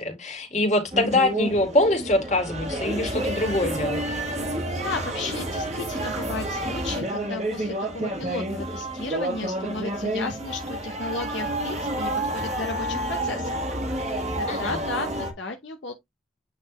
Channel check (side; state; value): both; normal; correlation 0.31